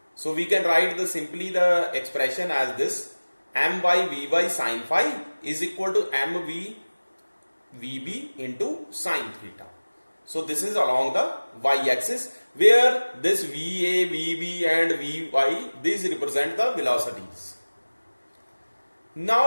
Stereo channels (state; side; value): inverted; both; correlation -1.00